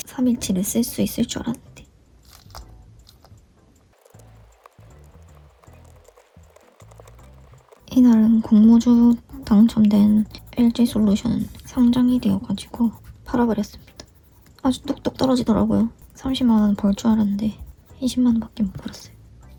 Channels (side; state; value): both; identical; correlation 1.00